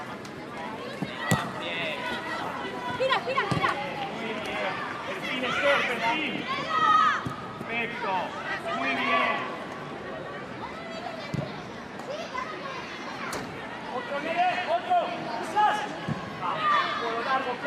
Perfil. Perfecto. Muy bien. Otro. Quizás. Por lo largo,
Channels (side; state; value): both; identical; correlation 1.00